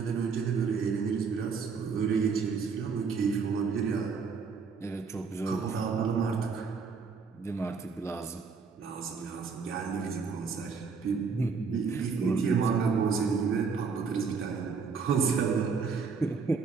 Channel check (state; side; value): quieter; left; 5.4 dB